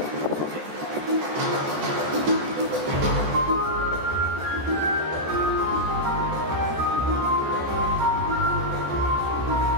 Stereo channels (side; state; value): left; late; 14 ms